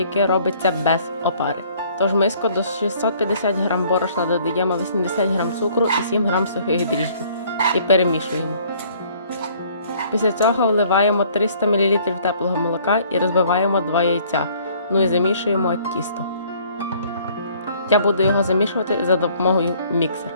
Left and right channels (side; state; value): both; inverted; correlation -0.58